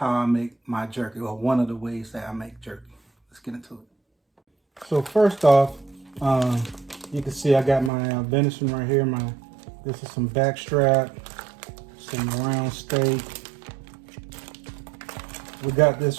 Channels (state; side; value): drops out; left; at 7.9 s